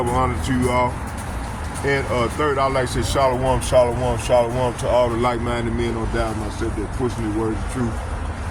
honor to you all. And third, I'd like to say shalom, shalom, shalom to all the like-minded men on down myself that pushing the words of truth.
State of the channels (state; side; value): identical; both; correlation 1.00